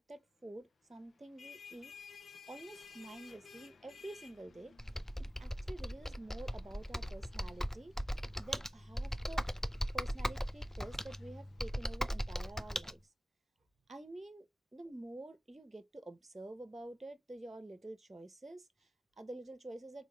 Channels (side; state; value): both; normal; correlation 0.96